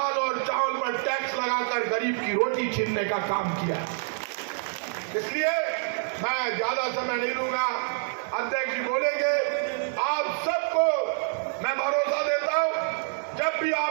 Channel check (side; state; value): left; silent; 57 dB below the other